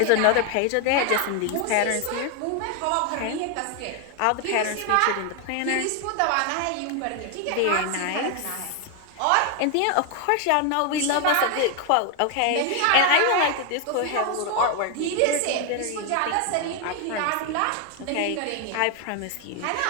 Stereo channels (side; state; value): both; different; correlation 0.01